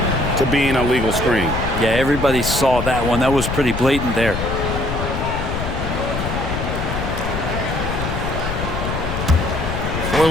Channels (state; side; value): noise; left; rumble, 4 dB below the sound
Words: to being a legal screen. Yeah, everybody saw that one. That was pretty blatant there. For